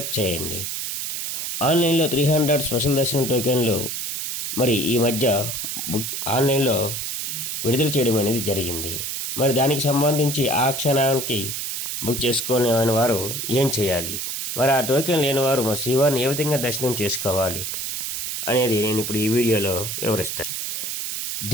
చేయండి. ఆన్లైన్లో 300 స్పెషల్ దర్శనం టోకెన్లు మరి ఈ మధ్య ఆన్లైన్లో విడుదల చేయడం అనేది జరిగింది. మరి దానికి సంబంధించి ఆ క్షణానికి బుక్ చేసుకునే వారు ఏం చేయాలి, మరి ఆ టోకెన్ లేని వారు మరి శ్రీవారిని ఏ విధంగా దర్శనం చేసుకోవాలి అనేది నేను ఇప్పుడు ఈ వీడియోలో వివరిస్తాను.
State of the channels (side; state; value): right; noise; hiss, 3 dB below the sound